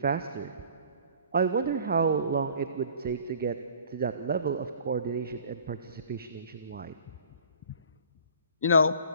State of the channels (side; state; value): both; inverted; correlation -0.49